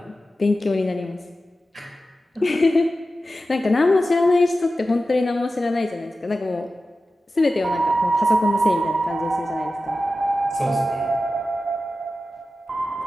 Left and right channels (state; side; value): normal; both; correlation 0.93